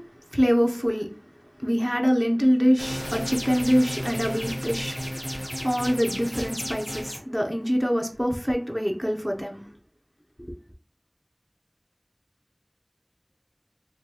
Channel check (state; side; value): identical; both; correlation 1.00